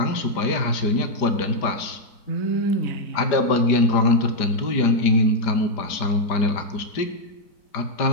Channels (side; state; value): right; late; 5.0 ms